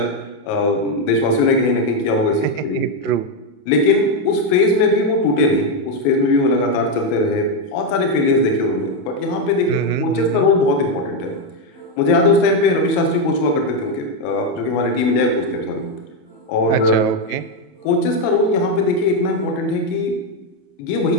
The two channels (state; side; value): late; right; 28 ms